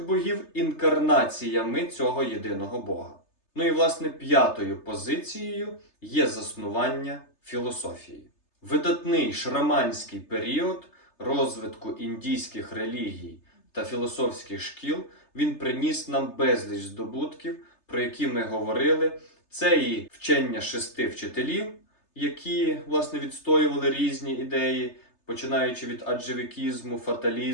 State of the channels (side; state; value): right; late; 3.3 ms